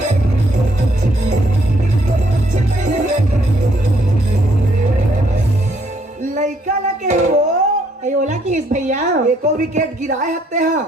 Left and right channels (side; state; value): both; normal; correlation 0.69